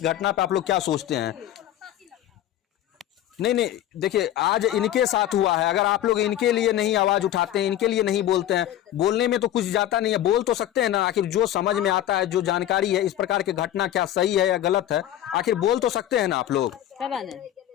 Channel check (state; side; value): quieter; right; 12.3 dB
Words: घटना पे आप लोग क्या सोचते हैं। नहीं, देखिए आज इनके साथ हुआ है, अगर आप लोग इनके लिए नहीं आवाज उठाते हैं, इनके लिए नहीं बोलते हैं, बोलने में तो कुछ जाता नहीं है, बोल तो सकते हैं ना। आखिर जो समझ में आता है, जो जानकारी है, इस प्रकार की घटना क्या सही है या गलत है, आखिर बोल तो सकते हैं ना आप लोग।